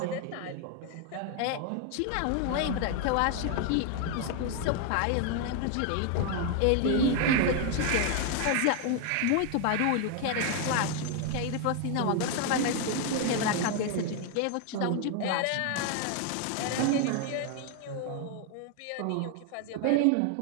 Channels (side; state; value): both; different; correlation 0.01